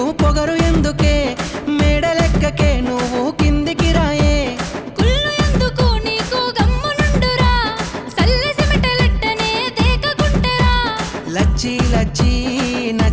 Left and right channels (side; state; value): both; identical; correlation 1.00